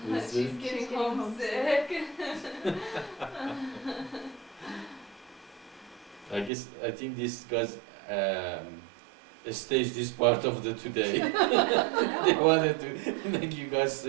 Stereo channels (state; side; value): drops out; left; at 6.5 s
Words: Who's She's this? getting homesick. I think this guys staged this part of the today. They wanted to make you guys